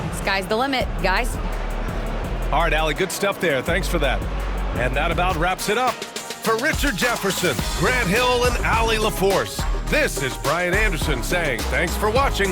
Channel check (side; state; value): both; identical; correlation 1.00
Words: Sky's the limit, guys. All right, Allie, good stuff there. Thanks for that. And that about wraps it up. For Richard Jefferson, Grant Hill, and Allie LaForce, this is Brian Anderson saying thanks for